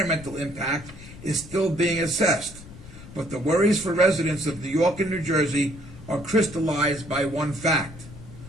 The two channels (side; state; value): left; noise; rumble, 17 dB below the sound